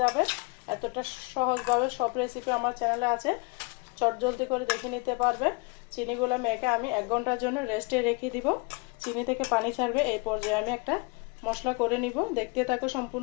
যাবে। এতটা সহজভাবে সব রেসিপি আমার চ্যানেলে আছে, চটজলদি করে দেখে নিতে পারবে। চিনিগুলো মেখে আমি 1 ঘন্টার জন্য রেস্টে রেখে দিব। চিনি থেকে পানি ছাড়বে। এই পর্যায়ে আমি একটা মশলা করে নিব, দেখতে থাকো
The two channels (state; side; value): quieter; right; 29.6 dB